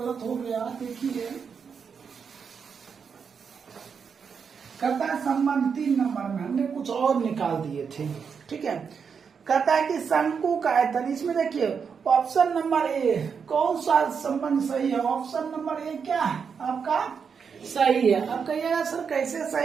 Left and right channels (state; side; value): quieter; left; 6.3 dB